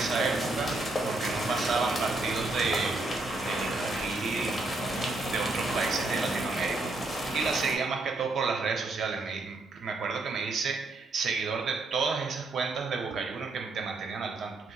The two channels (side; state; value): left; quieter; 3.1 dB